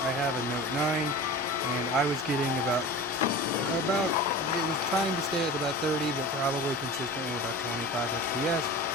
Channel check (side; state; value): both; normal; correlation 0.34